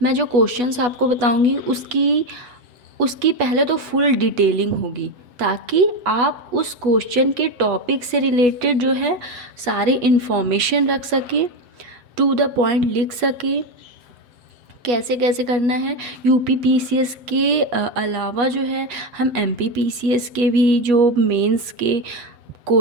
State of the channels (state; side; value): late; left; 8.3 ms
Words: मैं जो क्वेश्चंस आपको बताऊंगी उसकी पहले तो फुल डिटेलिंग होगी ताकि आप उस क्वेश्चन के टॉपिक से रिलेटेड जो है सारी इन्फॉर्मेशन रख सकें, टू द पॉइंट लिख सकें, कैसे कैसे करना है। यूपी पीसीएस के अलावा जो है हम एमपी पीसीएस के भी जो मेंस के